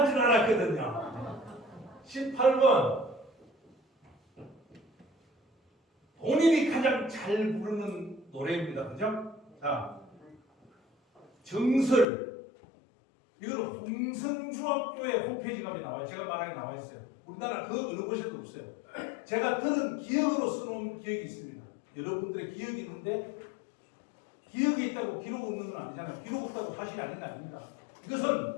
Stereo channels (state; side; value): drops out; right; at 12.1 s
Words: 줄 알았거든요. 18번. 본인이 가장 잘 부르는 노래입니다. 그죠? 자, 정설. 이거는 홍성중학교의 홈페이지 가면 나와요. 제가 말하게 나와 있어요. 우리나라 그 어느 곳에도 없어요. 제가 들은 기억으로 써놓은 기억이 있습니다. 여러분들의 기억이 있는데 기억이 있다고 기록 없는 건 아니잖아요. 기록 없다고 사실이 아닌 게 아닙니다.